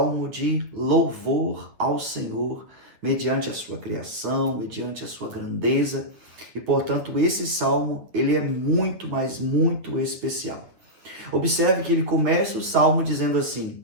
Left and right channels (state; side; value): late; left; 9.1 ms